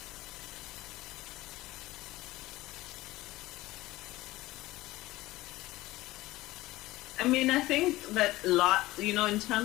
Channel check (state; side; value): quieter; right; 18.1 dB